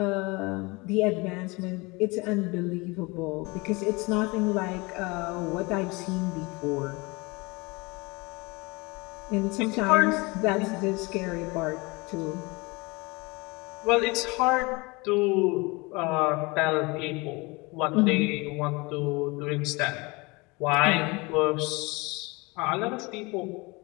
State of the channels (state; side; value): quieter; right; 25.7 dB